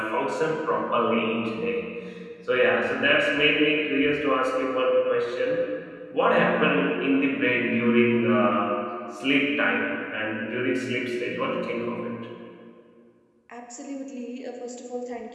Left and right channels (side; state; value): both; identical; correlation 1.00